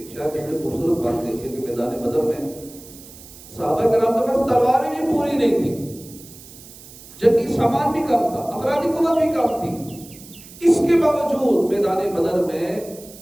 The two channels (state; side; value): noise; right; hiss, 19 dB below the sound